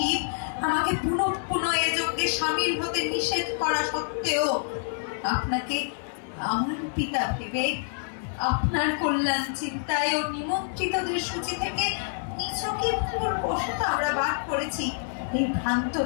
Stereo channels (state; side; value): silent; right; digital silence